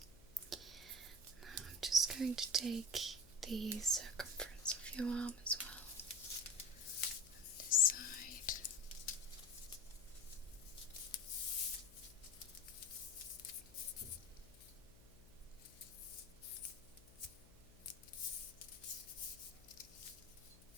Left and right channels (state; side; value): noise; left; hum, 22 dB below the sound